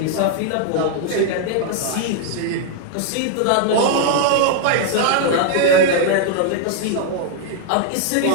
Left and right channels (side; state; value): both; different; correlation 0.00